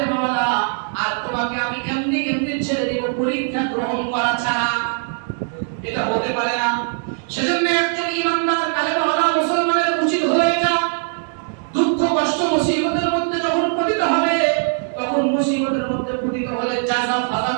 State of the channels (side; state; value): left; silent; 63 dB below the other